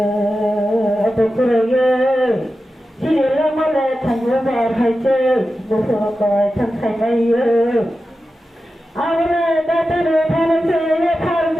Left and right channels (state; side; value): normal; both; correlation 0.92